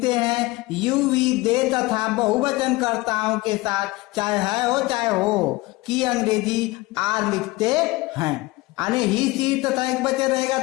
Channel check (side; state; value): right; quieter; 21.1 dB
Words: हैं। यू वी दे तथा बहुवचन कर्ताओं के साथ चाहे है हो चाहे हो की अंग्रेजी आर लिखते हैं। यानी ही सी तथा एक वचन रहेगा